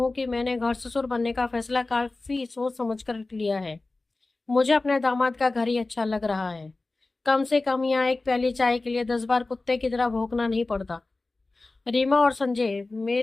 कि मैंने घर ससुर बनने का फैसला काफी सोच समझ कर लिया है। मुझे अपने दामाद का घर ही अच्छा लग रहा है। कम से कम यहाँ एक प्याली चाय के लिए 10 बार कुत्ते की तरह भौंकना नहीं पड़ता। रीमा और संजय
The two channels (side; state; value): right; quieter; 3.3 dB